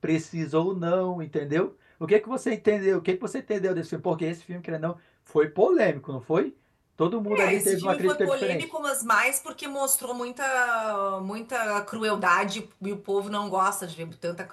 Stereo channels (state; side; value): identical; both; correlation 1.00